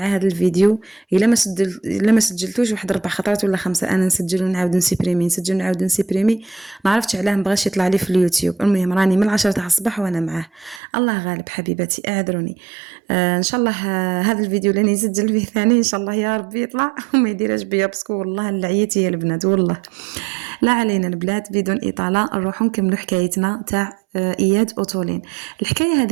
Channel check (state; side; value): drops out; left; at 10.8 s